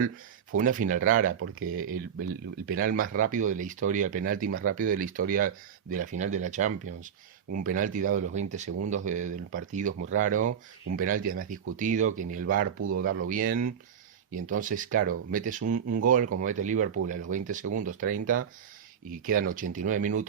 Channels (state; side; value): quieter; left; 7.9 dB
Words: Fue una final rara porque el penal más rápido de la historia, el penalti más rápido de la historia de la final de la Champions. Un penalti dado a los 20 segundos del partido es muy raro, un penalti además discutido, que ni el VAR pudo darlo bien. Y entonces, claro, metes un gol como mete Liverpool a los 20 segundos, 30, y quedan 89